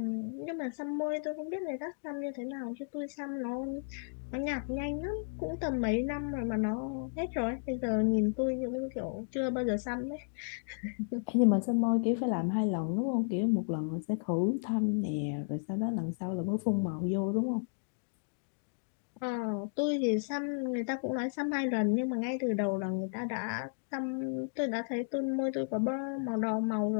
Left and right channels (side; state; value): right; silent; digital silence